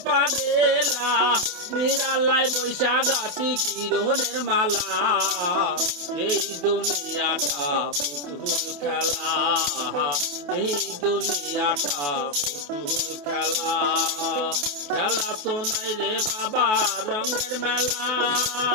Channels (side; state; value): left; late; 28 ms